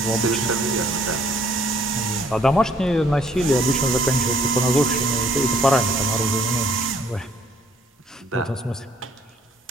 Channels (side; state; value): both; normal; correlation 0.62